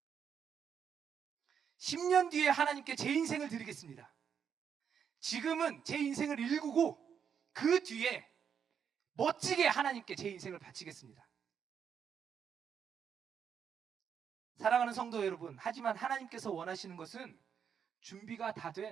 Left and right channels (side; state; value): left; quieter; 7.6 dB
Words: 10년 뒤에 하나님께 제 인생을 드리겠습니다. 지금은 제 인생을 일구고 그 뒤에 멋지게 하나님께 제 인생을 바치겠습니다. 사랑하는 성도 여러분, 하지만 하나님께서 원하시는 것은 준비가 다